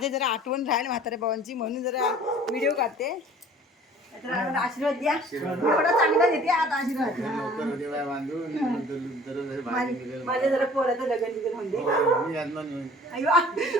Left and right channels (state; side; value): normal; both; correlation 0.50